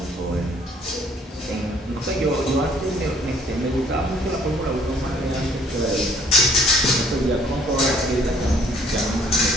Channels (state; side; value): normal; both; correlation 0.60